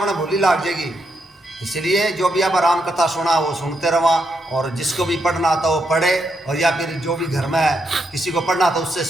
भूली लाग जाएगी। इसलिए जो भी आप राम कथा सुना वो सुनते रहो, और जिसको भी पढ़ना आता वो पढ़े, और या फिर जो भी घर में किसी को पढ़ना आता उससे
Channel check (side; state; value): both; normal; correlation 0.80